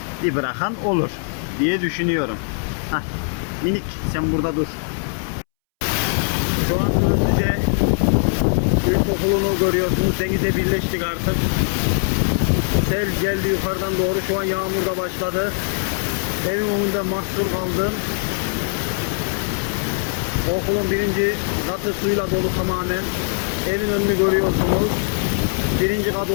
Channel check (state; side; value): silent; right; 65 dB below the other